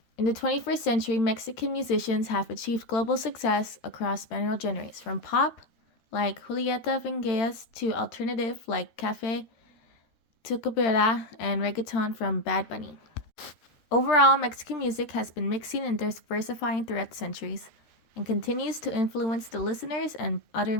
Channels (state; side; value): late; right; 13 ms